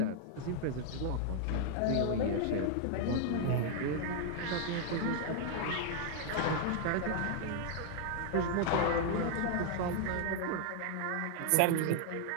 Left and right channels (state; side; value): different; both; correlation 0.00